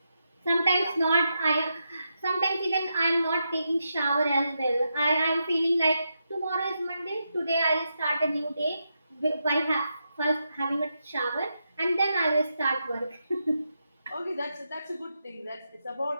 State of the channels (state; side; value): inverted; both; correlation -0.85